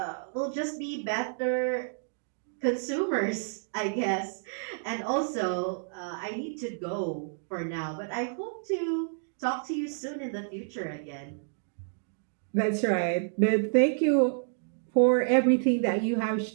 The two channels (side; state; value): left; silent; digital silence